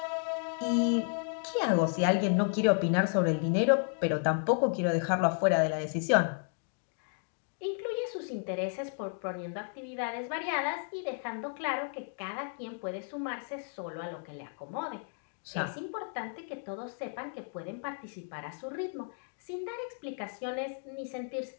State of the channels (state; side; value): silent; right; 56 dB below the other